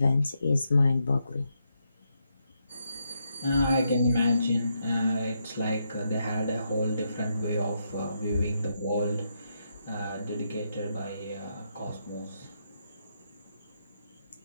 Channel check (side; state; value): both; inverted; correlation -0.81